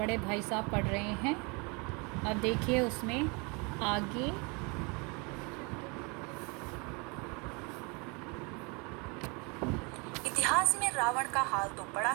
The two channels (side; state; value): left; quieter; 30.6 dB